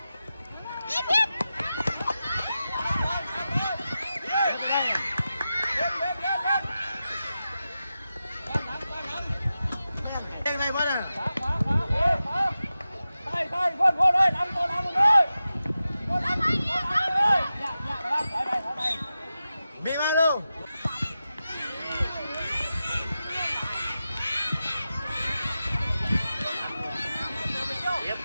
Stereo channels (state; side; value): inverted; both; correlation -0.92